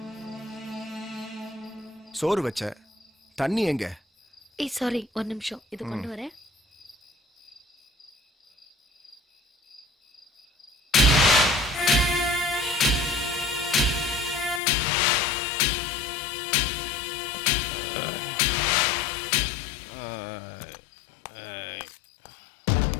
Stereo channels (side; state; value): right; drops out; at 14.6 s